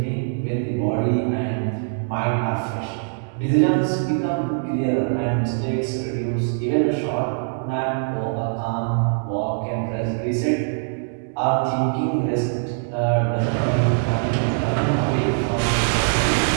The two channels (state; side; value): silent; left; 64 dB below the other